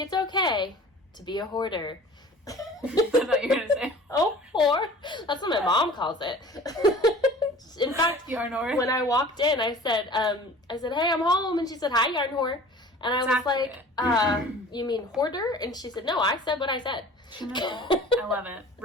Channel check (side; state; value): both; normal; correlation 0.44